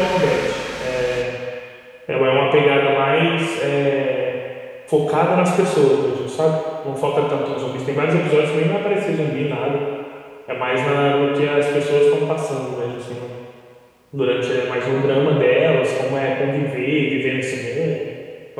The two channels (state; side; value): identical; both; correlation 1.00